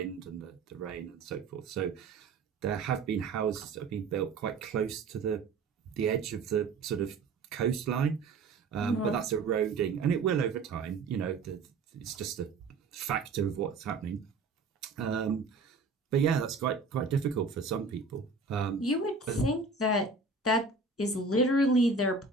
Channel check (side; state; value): left; quieter; 4.0 dB